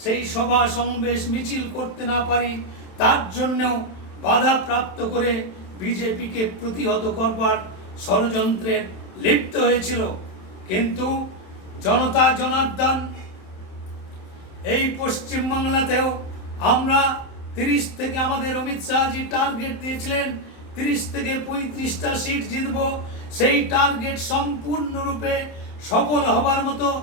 সেই সভা সমাবেশ মিছিল করতে না পারি তার জন্যও বাধা প্রাপ্ত করে বিজেপিকে প্রতিহত করবার ষড়যন্ত্রে লিপ্ত হয়েছিল। কিন্তু জনতা জনার্দন এই পশ্চিমবাংলাতেও আমরা 30 থেকে আমাদের অমিত শাহজি টার্গেট দিয়েছিলেন 30 থেকে 35টা সিট জিতব। সেই টার্গেট সম্পূর্ণরূপে সফল হবার মতো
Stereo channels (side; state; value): right; late; 27 ms